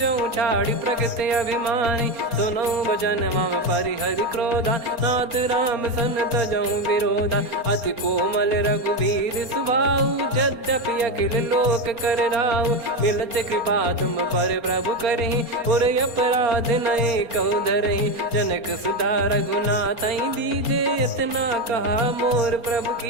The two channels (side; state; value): left; late; 4.3 ms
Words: छाड़ी प्रकृति अभिमानी। सुनो भजन मम परिहरि क्रोधा नाथ राम सन तजौ विरोधा। अति कोमल रघुवीर सुभाऊ यद्यपि अखिल लोक कर राऊ। मिलत कृपा तुम पर प्रभु करहि पुर अपराध नए कहु धरहि। जनक सुधा रघुनाथ दीजे इतना कहा मोर प्रभु